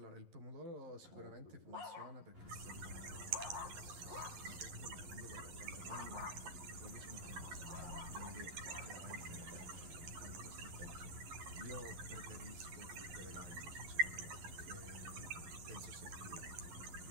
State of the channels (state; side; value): late; left; 11 ms